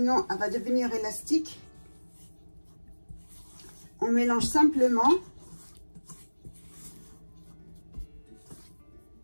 elle va devenir élastique. On mélange simplement.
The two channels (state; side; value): inverted; both; correlation -1.00